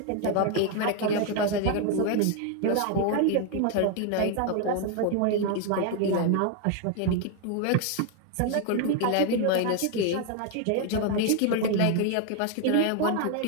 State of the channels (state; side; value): different; both; correlation 0.01